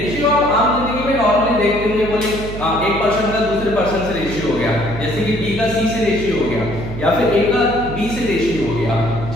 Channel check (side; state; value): right; noise; hum, 9 dB below the sound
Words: आप आम जिंदगी में नॉर्मली देखते होंगे, बोले एक पर्सन का दूसरे पर्सन से रेशियो हो गया, जैसे कि बी का सी से रेशियो हो गया या फिर ए का बी से रेशियो हो गया।